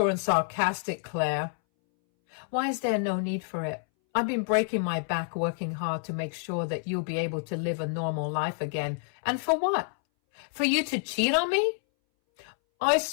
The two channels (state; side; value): silent; right; 59 dB below the other